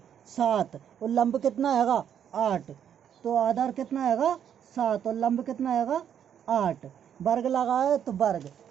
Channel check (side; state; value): left; quieter; 9.0 dB